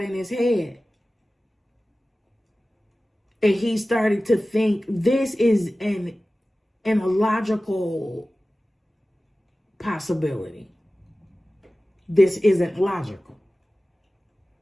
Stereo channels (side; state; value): both; normal; correlation 0.96